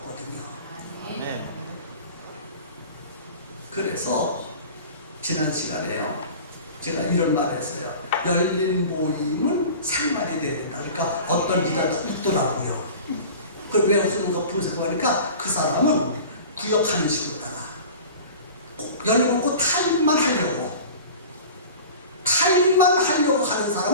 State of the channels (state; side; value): inverted; both; correlation -0.38